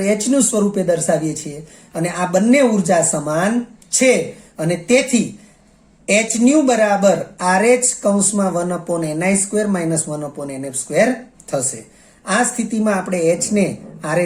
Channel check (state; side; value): identical; both; correlation 1.00